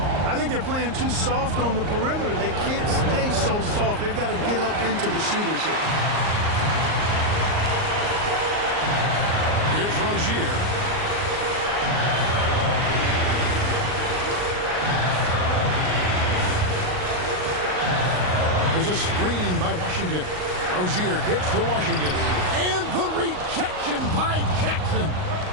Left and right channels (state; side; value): late; left; 38 ms